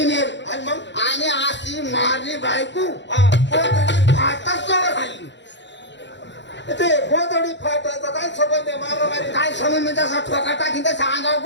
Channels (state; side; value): late; right; 0.52 ms